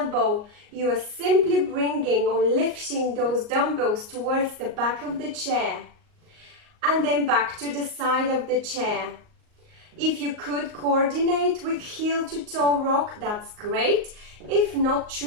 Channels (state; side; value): late; left; 38 ms